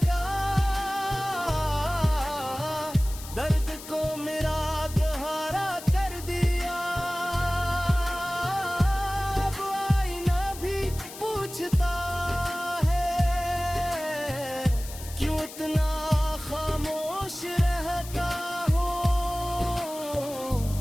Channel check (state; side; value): noise; left; hiss, 14 dB below the sound